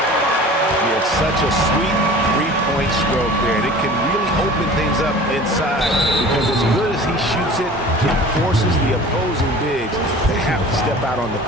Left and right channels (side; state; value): both; normal; correlation 0.42